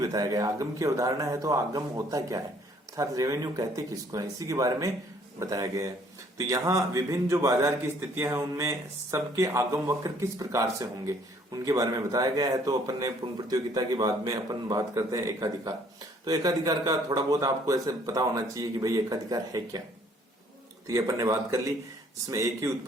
गया। आगम की अवधारणा है तो आगम होता क्या है, अर्थात रेवेन्यू कहते किसको है, इसी के बारे में बताया गया है। तो यहाँ विभिन्न जो बाजार की स्थितियां हैं उनमें सबके आगम वक्र किस प्रकार से होंगे उनके बारे में बताया गया है। तो अपन ने पूर्ण प्रतियोगिता के बाद में अपन बात करते हैं एकाधिकार। तो एकाधिकार का थोड़ा बहुत आपको ऐसे पता होना चाहिए कि भाई एकाधिकार है क्या। तो ये अपन ने बात कर ली, जिसमें एक ही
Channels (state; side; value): normal; both; correlation 0.61